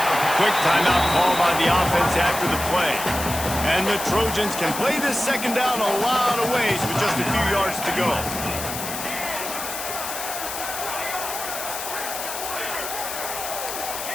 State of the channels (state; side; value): noise; left; hiss, 6 dB below the sound